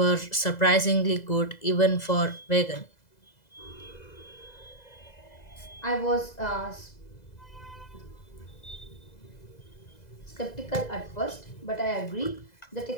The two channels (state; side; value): late; right; 2.0 ms